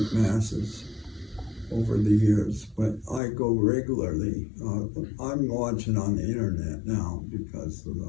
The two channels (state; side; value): drops out; right; at 3.2 s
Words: Masses over the years, but I go regularly. I'm watching on the internet now because of